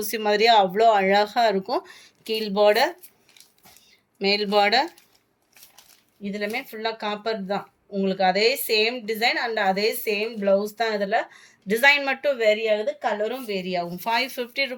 மாதிரியே அவ்வளோ அழகாக இருக்கும். கீழ் பார்டர் மேல் பார்டர் இதுலமே ஃபுல்லாக காப்பர் தான். உங்களுக்கு அதே சேம் டிசைன் அண்ட் அதே சேம் ப்ளவுஸ் தான். இதில் டிசைன் மட்டும் வேரி ஆகுது, கலரும் வேரி ஆகும். 550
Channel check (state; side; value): identical; both; correlation 1.00